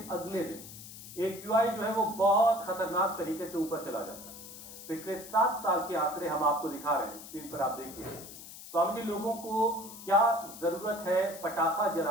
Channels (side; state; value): left; noise; hiss, 14 dB below the sound